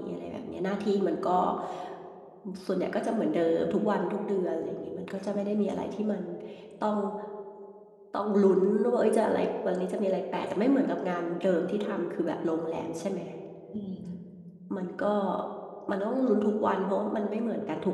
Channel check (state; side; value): identical; both; correlation 1.00